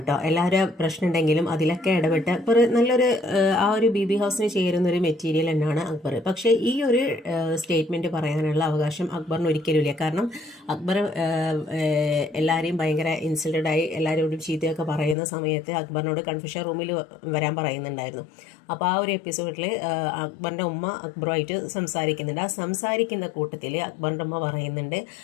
എല്ലാവരും പ്രശ്നം ഉണ്ടെങ്കിലും അതിലൊക്കെ ഇടപെട്ട് അക്ബർ നല്ലൊരു ആ ഒരു ബി ബി ഹൗസിന് ചേരുന്ന ഒരു മെറ്റീരിയൽ തന്നെയാണ് അക്ബർ. പക്ഷേ ഈ ഒരു സ്റ്റേറ്റ്മെന്റ് പറയാനുള്ള അവകാശം അക്ബറിന് ഒരിക്കലും ഇല്ല. കാരണം അക്ബർ എല്ലാവരെയും ഭയങ്കര ഇൻസൾട്ടഡായി എല്ലാവരോടും ചീത്തയൊക്കെ പറയുന്ന സമയത്ത് അക്ബറിനോട് കൺഫ്യൂഷൻ റൂമിൽ വരാൻ പറയുന്നുണ്ടായിരുന്നു. അപ്പോൾ ആ ഒരു എപ്പിസോഡിൽ അക്ബറിൻ്റെ ഉമ്മ അക്ബറുമായിട്ട് സംസാരിക്കുന്നുണ്ട്. ആ സംസാരിക്കുന്ന കൂട്ടത്തിൽ അക്ബറിൻ്റെ ഉമ്മ പറയുന്നുണ്ട്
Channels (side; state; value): right; drops out; at 15.2 s